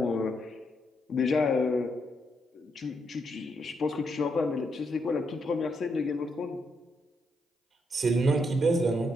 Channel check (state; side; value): normal; both; correlation 0.79